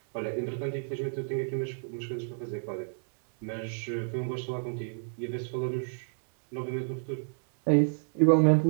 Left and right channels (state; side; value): silent; left; digital silence